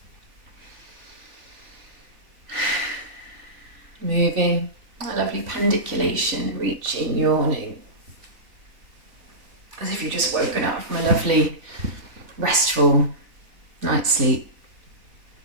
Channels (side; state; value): left; late; 3.4 ms